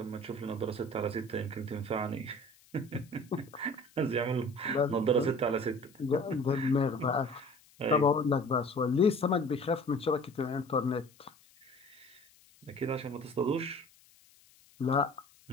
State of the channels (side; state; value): left; noise; hiss, 28 dB below the sound